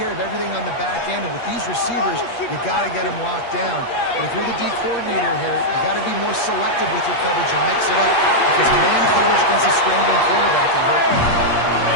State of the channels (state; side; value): late; right; 8.4 ms